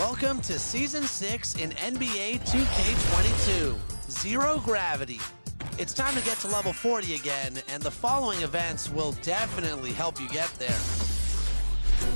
to Season 6 in NBA 2K22, Zero Gravity. It's time to get to level 40 again, and the following events will definitely help you get there.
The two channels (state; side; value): inverted; both; correlation -1.00